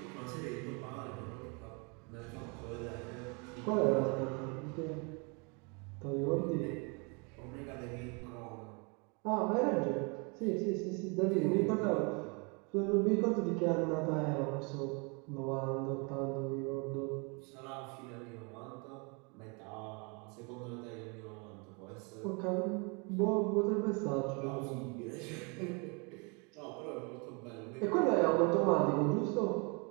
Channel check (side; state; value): left; quieter; 32.6 dB